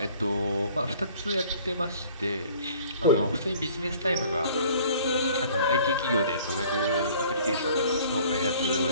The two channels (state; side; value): inverted; both; correlation -0.52